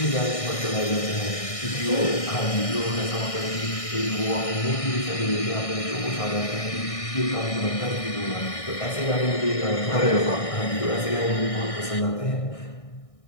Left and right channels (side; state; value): right; late; 1.6 ms